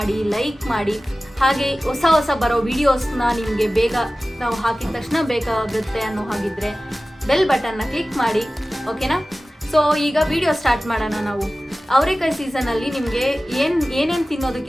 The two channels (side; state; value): both; normal; correlation 0.96